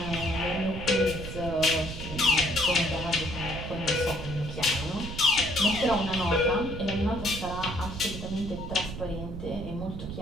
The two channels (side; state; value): right; noise; rumble, 8 dB below the sound